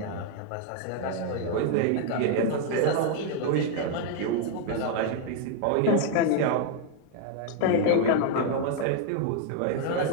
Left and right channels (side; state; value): both; different; correlation 0.00